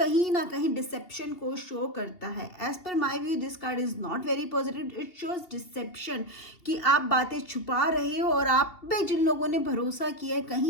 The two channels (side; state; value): right; late; 2.8 ms